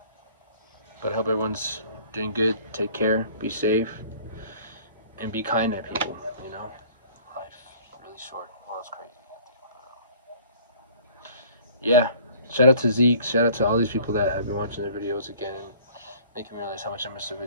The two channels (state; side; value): inverted; both; correlation -0.51